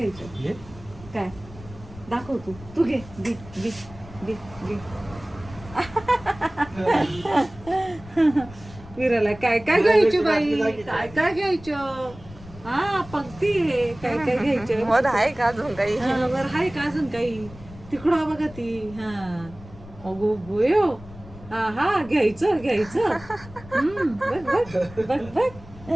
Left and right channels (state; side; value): noise; left; rumble, 18 dB below the sound